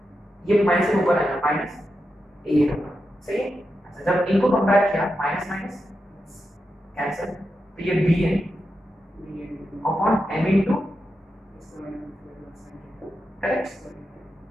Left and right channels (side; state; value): both; normal; correlation 0.88